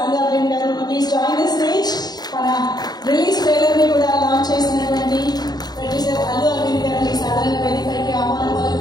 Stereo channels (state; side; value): late; right; 0.20 ms